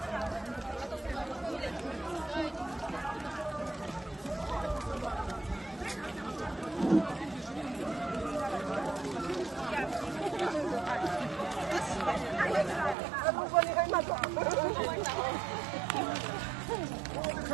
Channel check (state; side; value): drops out; left; at 13.0 s